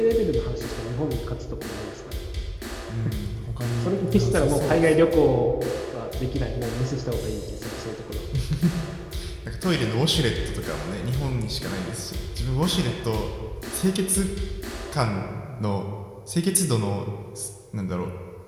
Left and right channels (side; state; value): both; identical; correlation 1.00